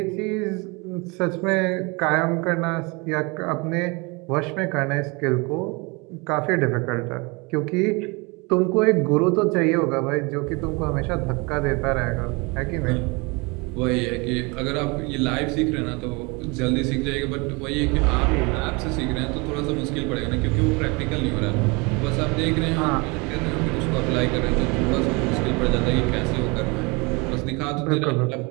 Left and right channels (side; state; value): left; quieter; 28.1 dB